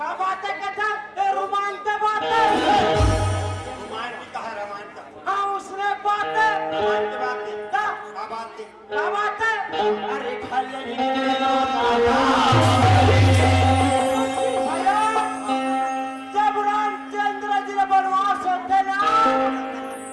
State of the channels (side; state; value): both; identical; correlation 1.00